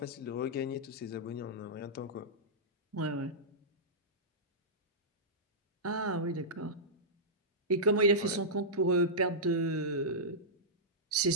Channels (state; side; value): normal; both; correlation -0.14